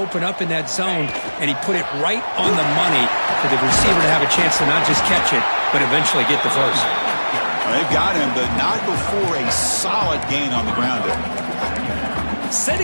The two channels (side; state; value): both; inverted; correlation -1.00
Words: up in that zone, and he put it right on the money for the receiver to have a chance to not just catch it, but eventually get the first. Well, they've got him, but not before a solid gain on the ground there.